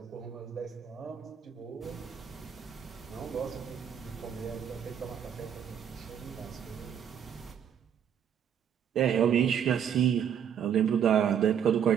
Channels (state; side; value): quieter; left; 8.5 dB